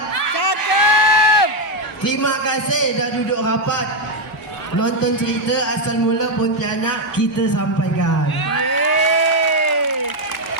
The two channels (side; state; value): both; normal; correlation 0.03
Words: Terima kasih dah duduk rapat. Nonton cerita asal mula Pontianak kita sampaikan.